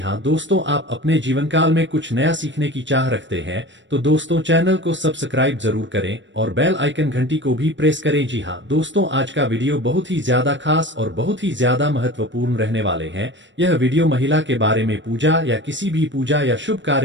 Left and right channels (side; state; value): left; late; 0.54 ms